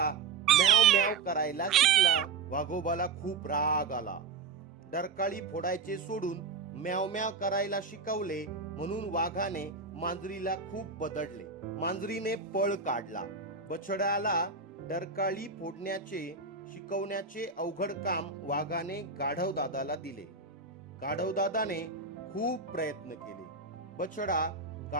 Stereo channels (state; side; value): quieter; left; 4.7 dB